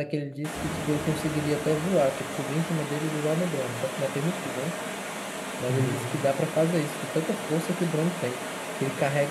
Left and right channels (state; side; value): identical; both; correlation 1.00